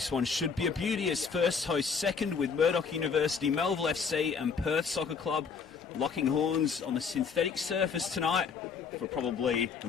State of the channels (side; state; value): right; quieter; 5.8 dB